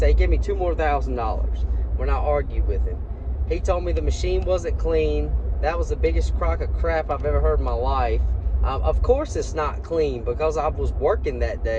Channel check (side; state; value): both; identical; correlation 1.00